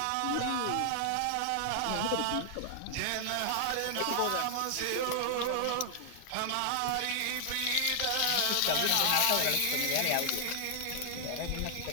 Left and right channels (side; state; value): both; different; correlation -0.01